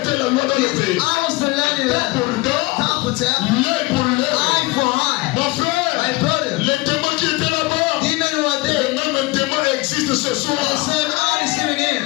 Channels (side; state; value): right; quieter; 22.2 dB